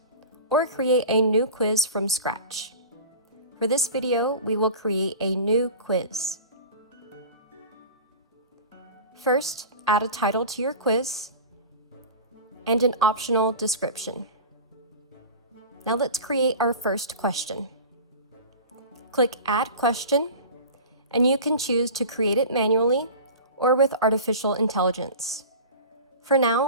or create a new quiz from scratch. For this video, we will create a new quiz. First, add a title to your quiz and an optional description. Now let's create our first question. Click Add Question, and you can choose to create it manually or with artificial intelligence. For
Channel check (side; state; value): both; inverted; correlation -0.35